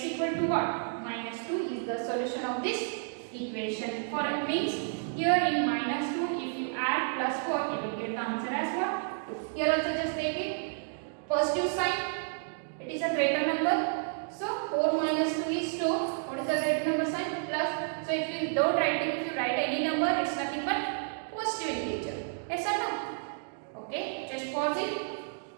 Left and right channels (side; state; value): left; silent; digital silence